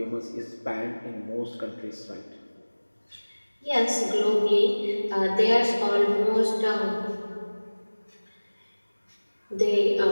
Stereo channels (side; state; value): both; inverted; correlation -1.00